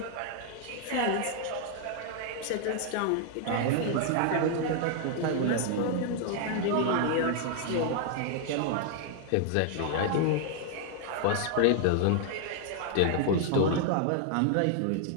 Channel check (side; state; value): both; different; correlation 0.00